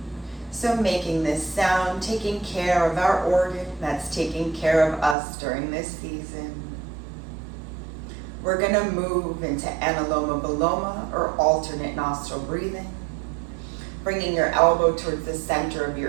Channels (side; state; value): left; drops out; at 5.2 s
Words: So making this sound, taking care of our organ that's taking care of us during this season. We're going to move into Anuloma-Viloma, or alternate nostril breathing. Bringing your elbow towards the center of